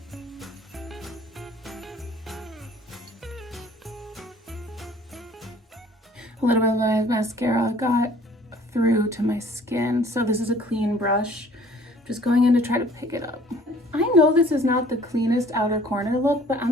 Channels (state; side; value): normal; both; correlation 0.54